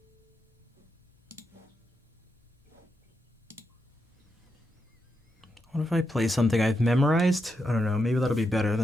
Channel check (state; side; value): normal; both; correlation 0.84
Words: What if I play something I've memorized? I don't know, maybe that'll be better